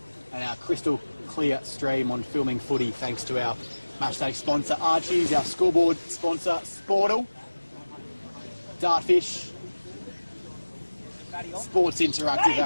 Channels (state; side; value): inverted; both; correlation -1.00